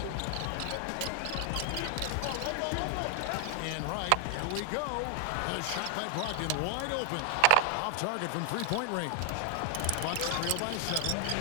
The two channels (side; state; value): both; different; correlation 0.00